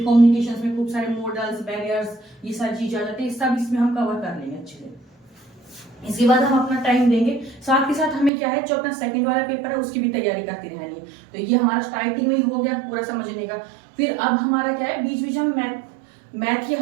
में खूब सारे मॉडल्स, बैरियर्स, ये सारी चीजें आ जाती है। सब इसमें हम कवर कर लेंगे अच्छे से। इसके बाद हम अपना टाइम देंगे। साथ के साथ हमें क्या है, जो अपना सेकंड वाला पेपर है उसकी भी तैयारी करती रहनी है। तो ये हमारा स्टार्टिंग में ही हो गया पूरा समझने का। फिर अब हमारा क्या है, बीच बीच हम मैथ की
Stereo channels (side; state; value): left; drops out; at 8.3 s